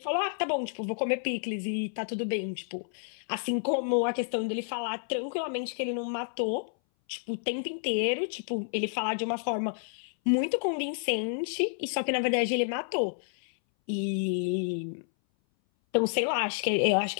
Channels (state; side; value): silent; right; 58 dB below the other